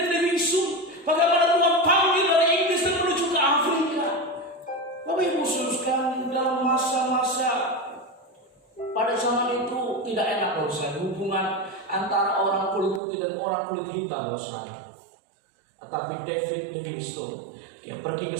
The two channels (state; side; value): drops out; left; at 13.0 s